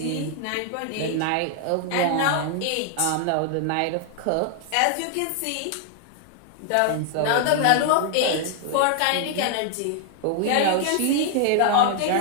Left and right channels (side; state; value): both; different; correlation 0.00